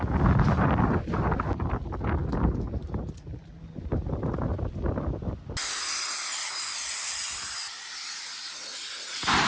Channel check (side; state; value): both; identical; correlation 1.00